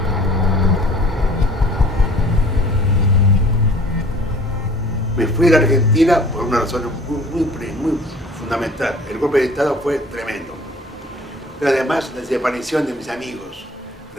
Me fui a la Argentina por una razón muy fundamental. El golpe de Estado fue tremendo. Pero además la desaparición de mis amigos.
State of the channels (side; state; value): both; normal; correlation 0.50